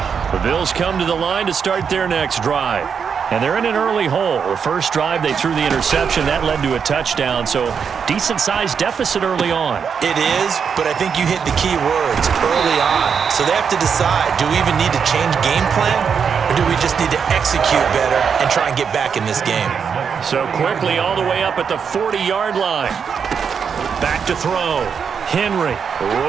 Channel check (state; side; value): quieter; left; 6.7 dB